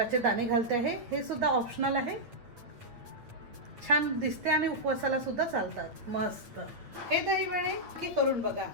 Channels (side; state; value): left; late; 8.8 ms